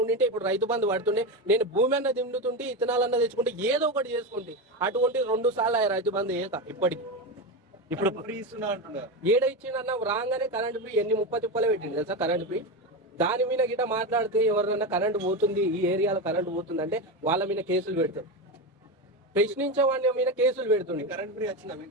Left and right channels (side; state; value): both; normal; correlation 0.17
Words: ఉండింటే ఇప్పుడు రైతు బంధు పడుతుండే, నేను భూమి అన్న దిండుతుంటే, ఇత్తనాలన్నా తెచ్చుకుంటే, ఏదో ఒకటి చేసుకుంటే. అటువంటి 2 సార్లు రైతు బంధు ఏక ఇప్పటికి. ఇప్పుడు ఏడ ఇచ్చిండన్న రాగానే కరెంట్ ఫ్రీ ఎన్ని 30 తిప్పలే పెట్టింది తెలుసా కరెంట్ ఫ్రీ. దాని మీద గిట్ట మాట్లాడితే ఎవరినన్నా కరెంట్ పోతుంది, ఈ ఏరియాలో కరెంట్ పోతుంది అంటే వాళ్ళ మీద కేసులు పెడతారు. ప్రశ్నించే వాళ్ళ మీద కేసులు పెడుతుంది. కరెంట్ ఫ్రీ వచ్చిందా